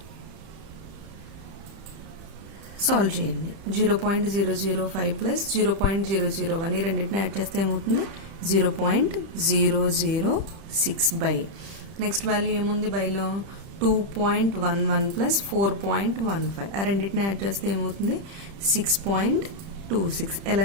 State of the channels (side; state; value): left; late; 30 ms